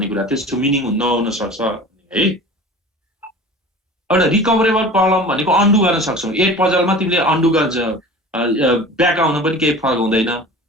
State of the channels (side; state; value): both; normal; correlation 0.39